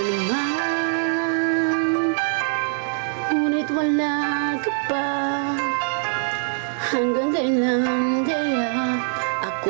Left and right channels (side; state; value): left; silent; digital silence